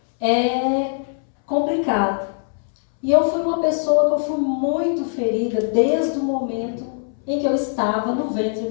é complicado. E eu fui uma pessoa que eu fui muito ferida desde o momento em que eu estava no ventre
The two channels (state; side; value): silent; right; 65 dB below the other